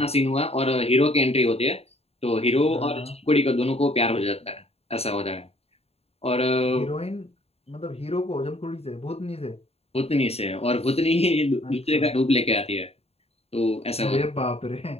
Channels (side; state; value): right; late; 0.29 ms